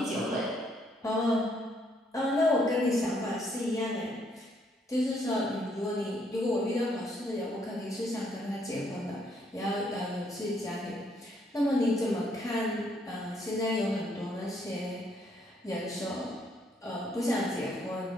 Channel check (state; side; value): normal; both; correlation 0.70